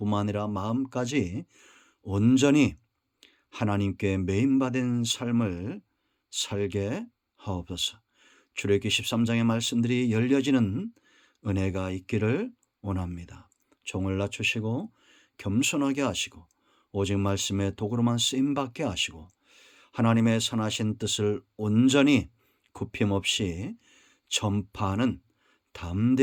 아니라 마음까지 온전히 하나님께 매인받은 삶을 살게 하옵소서. 출애굽기 13장의 말씀들이 열려지는 은혜가 있기를 원합니다. 종을 낮추시고 겸손하게 하시고 오직 말씀의 도구로만 쓰임받게 하시고 하나님의 선하신 뜻을 온전히 굽힘 없이 전파하는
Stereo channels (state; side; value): identical; both; correlation 1.00